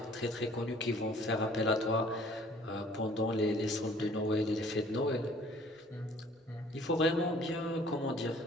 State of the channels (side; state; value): both; normal; correlation 0.54